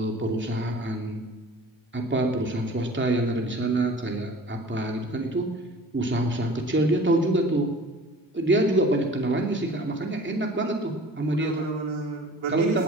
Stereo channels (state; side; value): normal; both; correlation 0.44